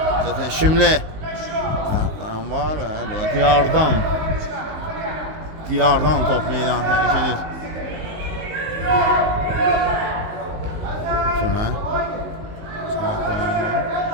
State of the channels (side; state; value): left; late; 19 ms